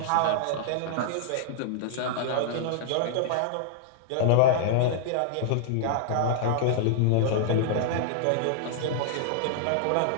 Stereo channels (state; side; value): different; both; correlation -0.01